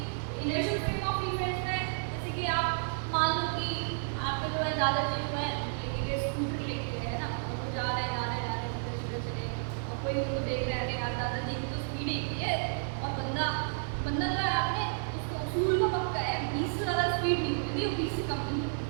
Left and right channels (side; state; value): left; silent; 57 dB below the other